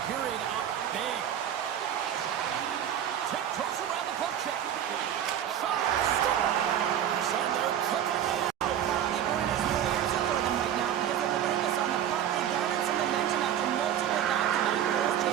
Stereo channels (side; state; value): left; quieter; 10.2 dB